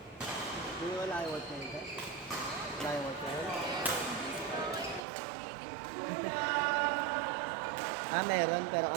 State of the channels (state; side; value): drops out; left; at 5.0 s